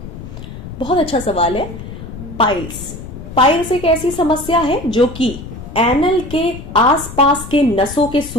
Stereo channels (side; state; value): left; noise; rumble, 12 dB below the sound